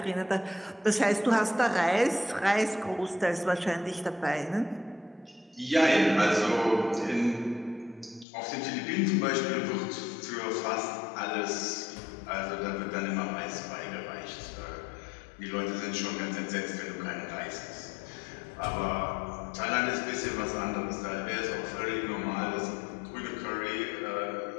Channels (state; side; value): drops out; right; at 8.2 s